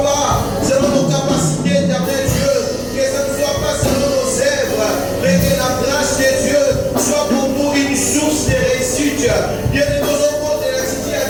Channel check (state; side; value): identical; both; correlation 1.00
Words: pas selon nos capacités, éternel Dieu, que ce ne soit pas selon nos œuvres, mais que la grâce de Dieu soit pour nous une source de réussite. Dieu de nos enfants de la cité